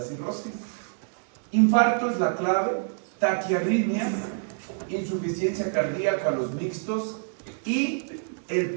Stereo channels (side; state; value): left; silent; digital silence